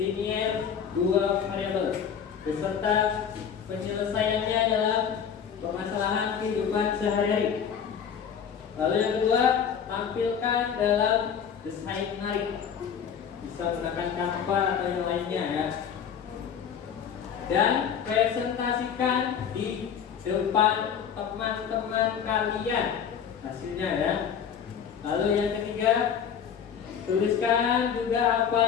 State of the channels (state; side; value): quieter; right; 7.7 dB